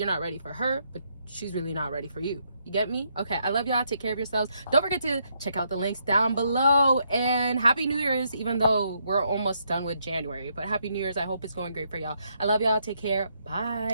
not ready for her, but she's really not ready for you. You get me? Okay, I love y'all. Take care of yourselves. Don't forget to check out the links down below, and happy New Year's, even though we're almost done with January, but happy New Year's. I hope it's going great for y'all. I love y'all. Take care.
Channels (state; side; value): inverted; both; correlation -0.75